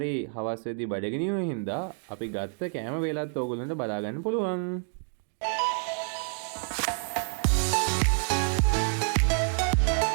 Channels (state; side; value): silent; left; 59 dB below the other